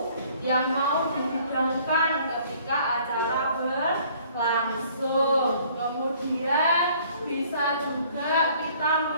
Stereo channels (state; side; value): inverted; both; correlation -0.57